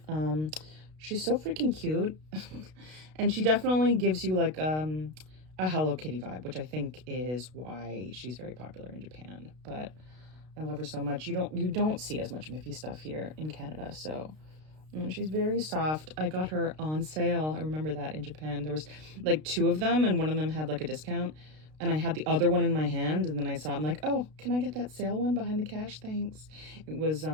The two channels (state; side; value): late; left; 32 ms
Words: She's so freaking cute. And she definitely gives you like a Hello Kitty vibe, which I think is why she's very popular in Japan. But I love her so much. You don't see as much Miffy stuff here in Canada, so she's very soft. I got her on sale. I remember that in Japan. There was like two of them, and one of them had like a discount. And I had the other one in my hand, and then I saw it. I'm like, oh, can I get that sale one behind the cash? Thanks. It was